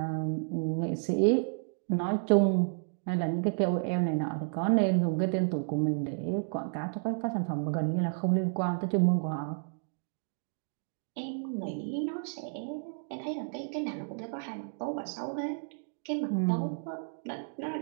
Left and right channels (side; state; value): left; silent; digital silence